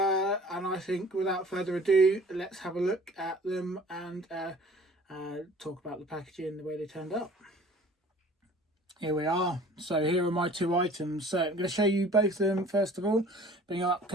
I think without further ado, let's have a look at them and talk about the packaging, the way they turned up. Here we are. So here are my 2 items. So I'm going to show you both of them first of all, bring up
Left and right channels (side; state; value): both; normal; correlation 0.49